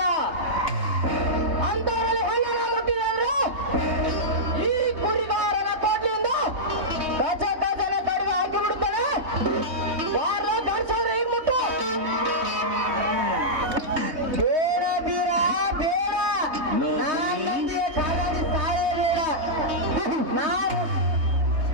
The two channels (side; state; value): left; late; 3.2 ms